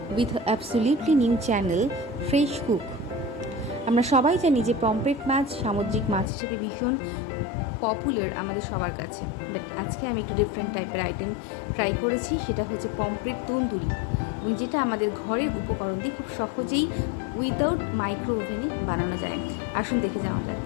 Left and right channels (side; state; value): right; drops out; at 6.3 s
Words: with a absolutely new channel Fresh Cook. আমরা সবাই জানি যে পমফ্রেট মাছ সামুদ্রিক মাছ হিসেবে ভীষণ পপুলার আমাদের সবার কাছে। বাট আজকে আমি একটু ডিফারেন্ট টাইপের আইটেম ট্রাই করেছি, সেটা হচ্ছে পমফ্রেট তন্দুরি, এবং যেটা আমাদের ঘরের উপকরণ দিয়ে খুব সহজেই উইদাউট মাইক্রো ওভেনে বানানো যায়। আসুন দেখে যাওয়া যাক।